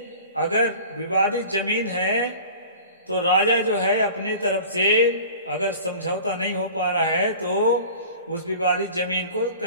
अगर विवादित जमीन है तो राजा जो है अपने तरफ से अगर समझौता नहीं हो पा रहा है तो उस विवादित जमीन को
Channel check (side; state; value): both; inverted; correlation -0.41